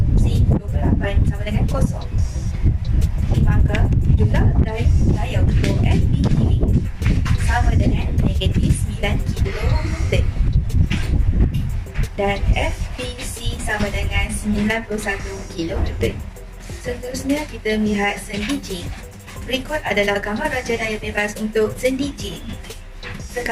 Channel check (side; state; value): both; identical; correlation 1.00